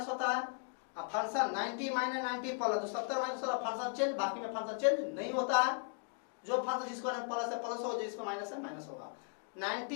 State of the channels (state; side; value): silent; right; 53 dB below the other